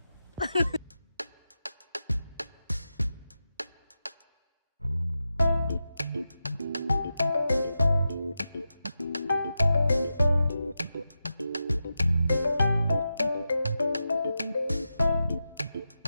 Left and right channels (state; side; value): inverted; both; correlation -0.90